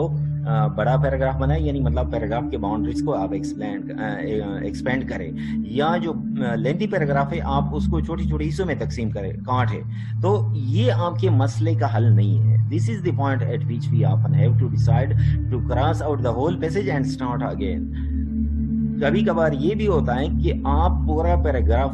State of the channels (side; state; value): both; identical; correlation 1.00